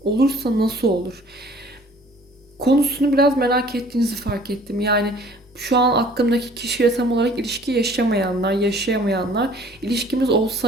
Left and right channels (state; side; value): normal; both; correlation 0.53